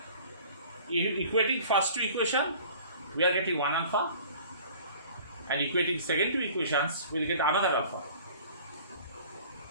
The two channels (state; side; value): inverted; both; correlation -0.47